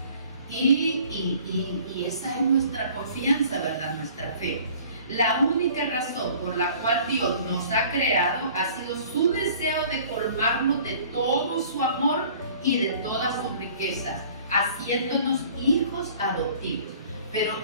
Y esa es nuestra confianza, ¿verdad? Nuestra fe. La única razón por la cual Dios nos ha creado ha sido su deseo de colmarnos de todo su amor y de todas sus riquezas, haciéndonos hijos adoptivos. Pero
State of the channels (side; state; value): both; inverted; correlation -0.51